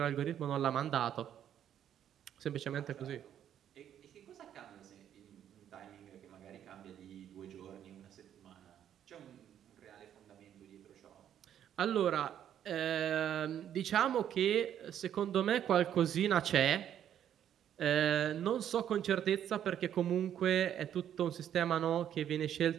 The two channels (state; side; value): quieter; left; 10.1 dB